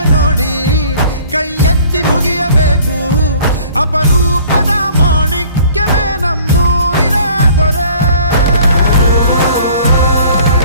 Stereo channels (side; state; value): both; inverted; correlation -0.52